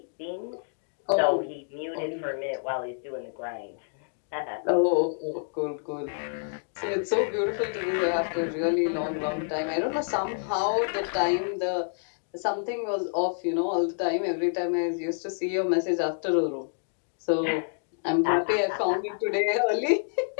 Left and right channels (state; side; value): silent; right; digital silence